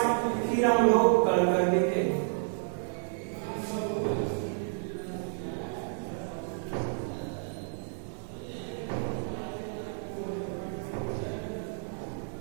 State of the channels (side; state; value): left; silent; digital silence